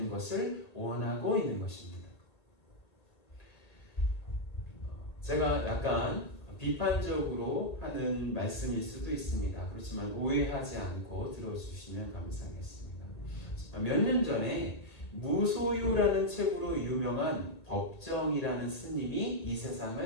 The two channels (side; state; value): right; late; 1.8 ms